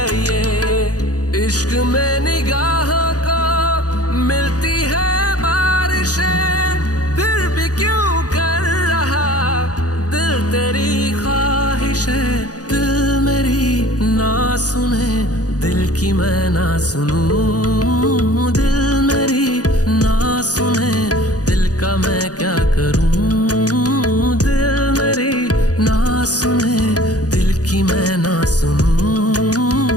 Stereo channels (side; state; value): right; late; 0.68 ms